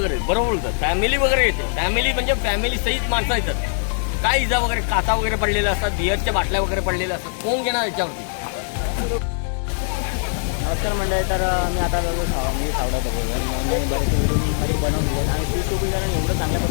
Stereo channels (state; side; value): silent; right; digital silence